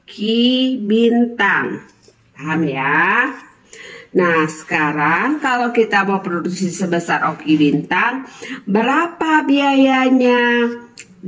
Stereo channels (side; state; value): both; identical; correlation 1.00